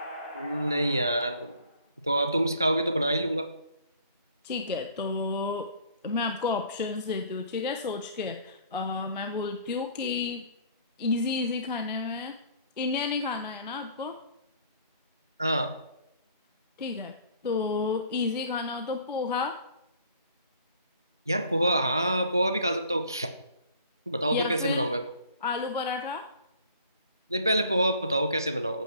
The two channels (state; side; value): inverted; both; correlation -0.54